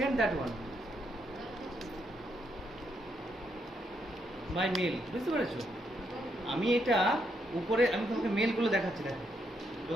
that one by mail, বুঝতে পেরেছো? আমি এটা উপরে, আমি তোমাকে মেলগুলো দেখাচ্ছি, দেখো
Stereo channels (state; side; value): normal; both; correlation 0.77